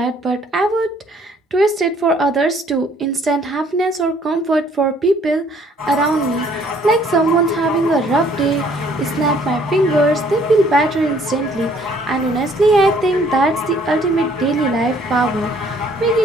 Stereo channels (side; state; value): both; normal; correlation 0.61